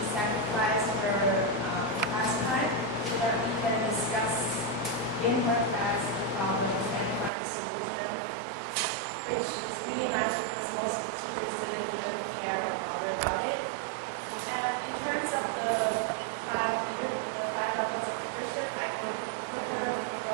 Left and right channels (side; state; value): left; drops out; at 7.3 s